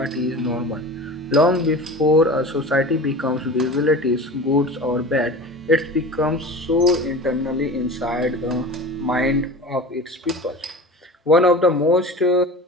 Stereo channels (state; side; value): normal; both; correlation 0.35